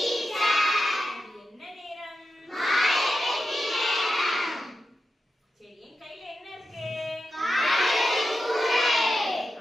என்ன நேரம்? சரி, என் கையில என்ன இருக்கு?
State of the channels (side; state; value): both; normal; correlation 0.89